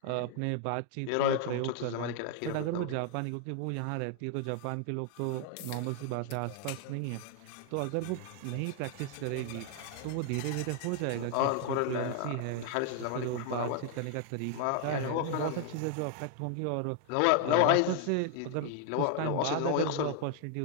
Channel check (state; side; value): different; both; correlation 0.00